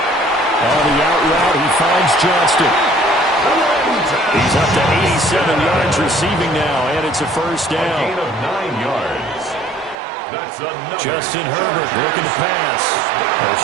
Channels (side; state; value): left; drops out; at 10.0 s